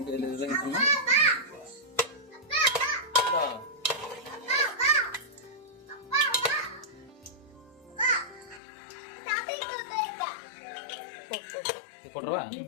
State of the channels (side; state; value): right; drops out; at 8.6 s